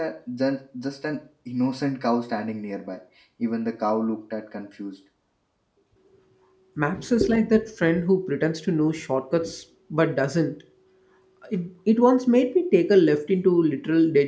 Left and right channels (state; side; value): identical; both; correlation 1.00